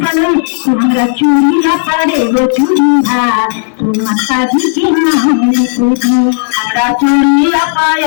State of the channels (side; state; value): right; silent; digital silence